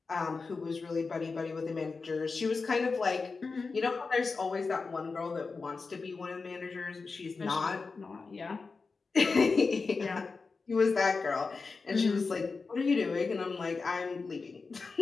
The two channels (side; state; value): right; quieter; 4.4 dB